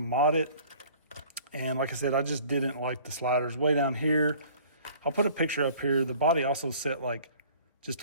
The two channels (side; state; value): both; inverted; correlation -0.50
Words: it. And like I said, I just didn't like the sliders way down here. I'll put a picture up here. The body also set like